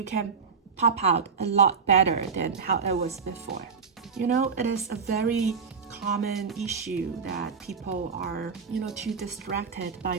can pop out a lot better than how it was before. You know, it is a very common issue that people are, too distracted by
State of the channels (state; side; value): quieter; left; 5.6 dB